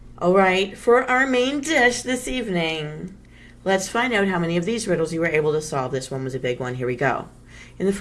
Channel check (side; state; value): both; identical; correlation 1.00